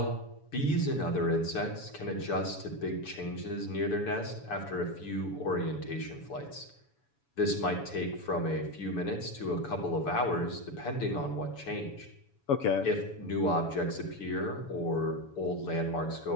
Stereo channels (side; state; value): right; late; 7.1 ms